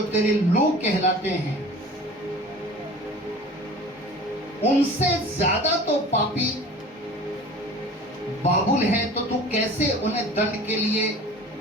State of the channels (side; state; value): both; normal; correlation 0.42